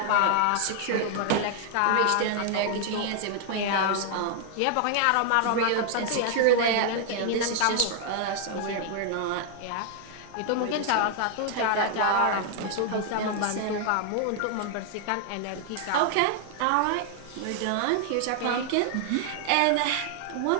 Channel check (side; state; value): both; different; correlation 0.00